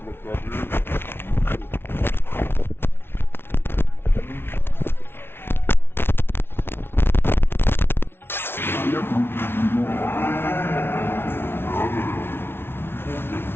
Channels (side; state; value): right; late; 0.11 ms